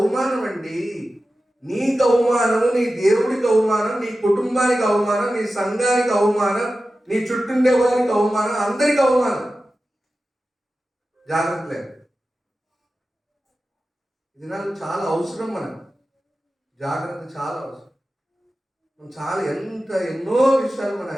అండి. నీకు అవమానము, నీ దేవుడికి అవమానం, నీ కుటుంబానికి అవమానం, నీ సంఘానికి అవమానం, నీ చుట్టుండే వారికి అవమానం, అందరికి అవమానం. జాగ్రత్త లేదు. ఇది నాకు చాలా అవసరం. మనకు జాగ్రత్త చాలా అవసరం. ఎన్నో విషయాలు మనం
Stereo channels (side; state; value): both; normal; correlation 0.94